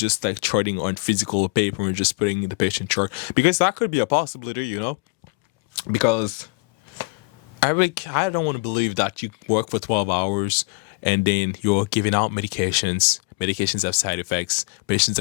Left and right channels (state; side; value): quieter; right; 31.4 dB